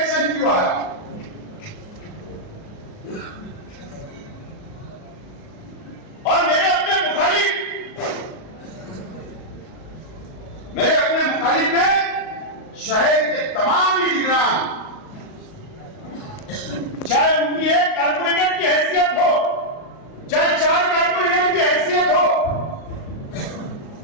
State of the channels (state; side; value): late; right; 38 ms